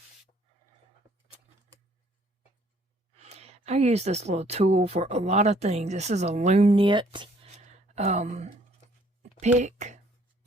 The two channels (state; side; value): normal; both; correlation 0.62